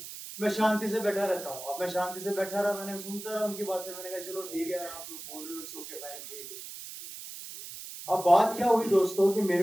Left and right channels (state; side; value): noise; right; hiss, 11 dB below the sound